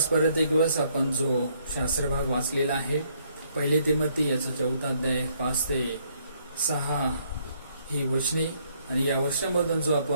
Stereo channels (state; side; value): inverted; both; correlation -0.69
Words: परत एक दिवस आपण जो शास्त्रभाग वाचलेला आहे पहिली तिमोथी याचा 4 अध्याय 5 ते 6 ही वचने आणि या वचनामधून जो